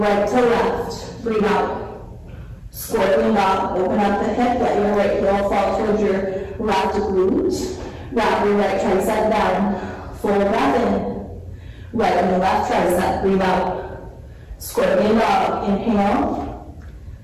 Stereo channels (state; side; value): identical; both; correlation 1.00